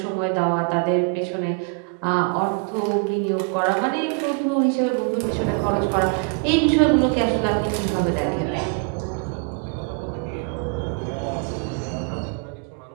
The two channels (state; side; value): quieter; left; 35.8 dB